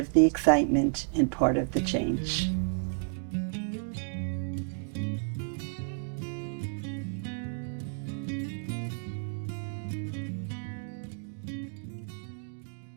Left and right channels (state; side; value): silent; left; digital silence